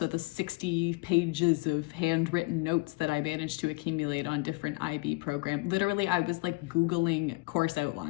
the 60 pages of handwritten notes that I managed to accumulate on different IB programs. Literally, I was like Googling course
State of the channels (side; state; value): right; quieter; 26.7 dB